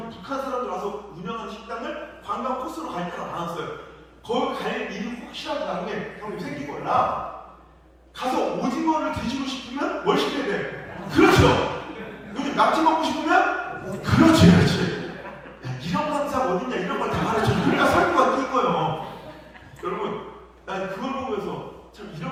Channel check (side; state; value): both; identical; correlation 1.00